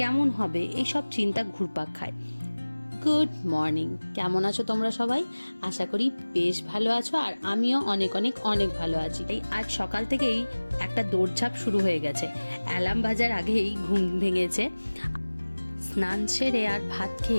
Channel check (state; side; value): inverted; both; correlation -1.00